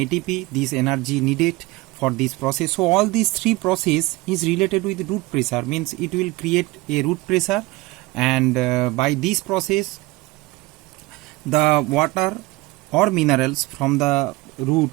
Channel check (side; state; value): left; quieter; 21.2 dB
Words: this energy needed for this process. So all these three process is related with root pressure, means it will create a root pressure, and by this process the water or minerals from the root